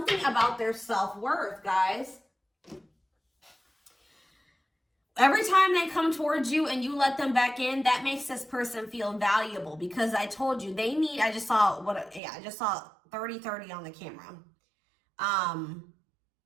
about their self-worth, guys. Every time they come towards you and you let them back in, that makes this person feel valuable because I told you they need, I just saw 30-30 on the camera.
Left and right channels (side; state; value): left; drops out; at 12.2 s